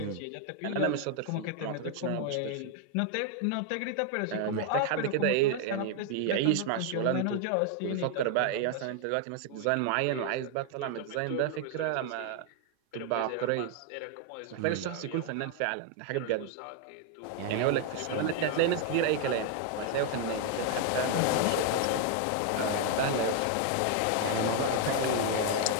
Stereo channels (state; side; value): different; both; correlation 0.00